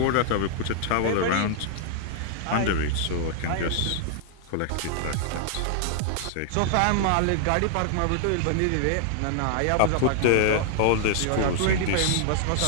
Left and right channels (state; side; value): different; both; correlation -0.01